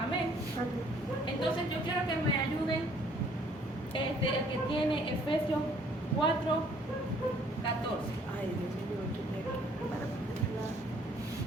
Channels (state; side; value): normal; both; correlation 0.60